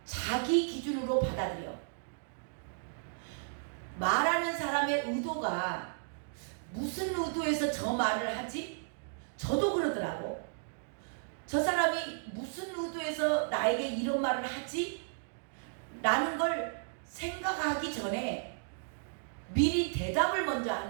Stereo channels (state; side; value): silent; left; digital silence